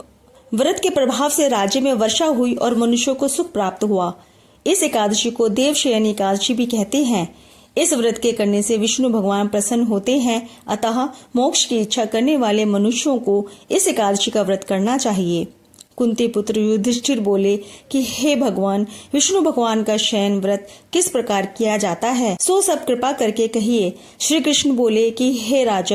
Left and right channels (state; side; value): identical; both; correlation 1.00